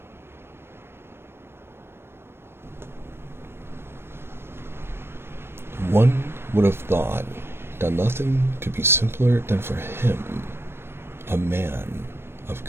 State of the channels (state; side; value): late; left; 0.11 ms